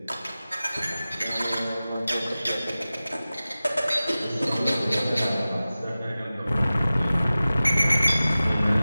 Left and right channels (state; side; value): inverted; both; correlation -0.96